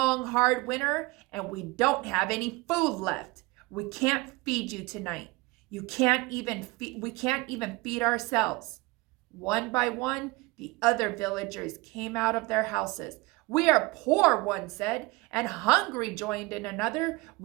hard winter, and we don't have any food left. We can't feed you tonight. We can't even feed ourselves. One by one, the other villagers came out of their houses. We are poor, one said, and hungry, joined in another.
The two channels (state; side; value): quieter; left; 23.2 dB